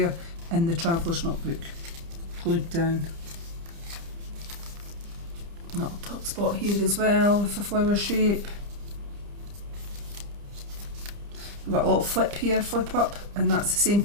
in the traveller's notebook, glued down. Little tuck spot here as well with a flower shape. We've got a little flip here, flip up, and that's the same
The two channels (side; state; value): left; late; 30 ms